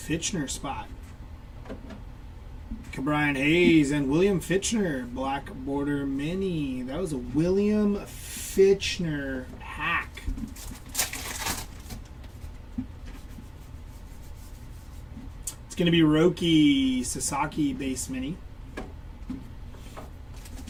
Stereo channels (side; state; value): both; identical; correlation 1.00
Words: spot. Brian Hayes and William Fitchner, black border mini. That was a William Fitchner hack. It's going to be Roki Sasaki base mini.